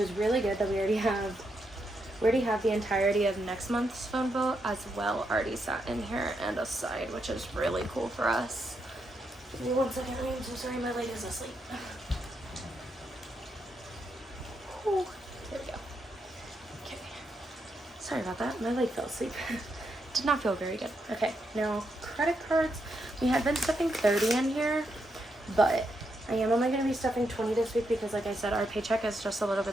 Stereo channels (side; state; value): both; normal; correlation 0.81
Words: really good that we already have the entirety of next month's phone bill as well already sat in here and aside, which is really cool for us. Give me 1 second, I'm so sorry, my leg is asleep. Ooh, there we go. Okay. Sorry about that. My leg fell asleep. Did not feel very good. Okay, now credit cards. We had been stuffing 30 in here, but I am only going to be stuffing 20 this week because, like I said, our paycheck is just a little